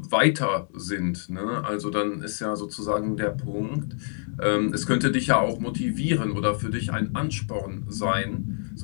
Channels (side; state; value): right; silent; digital silence